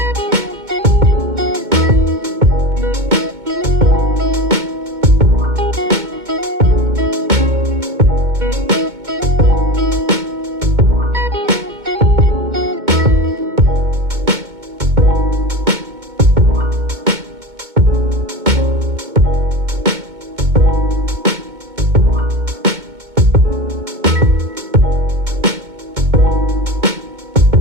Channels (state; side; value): late; left; 2.2 ms